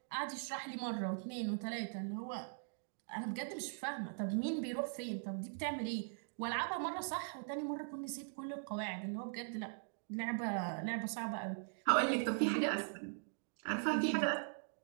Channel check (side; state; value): left; silent; digital silence